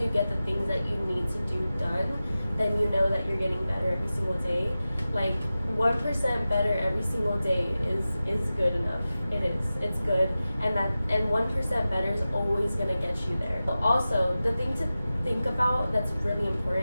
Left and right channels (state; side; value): inverted; both; correlation -0.95